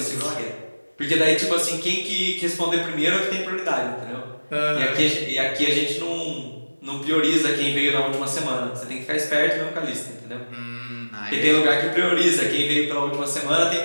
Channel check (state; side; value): inverted; both; correlation -1.00